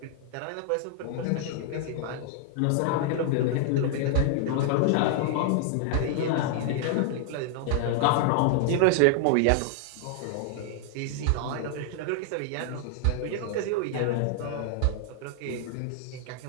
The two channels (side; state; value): both; different; correlation 0.00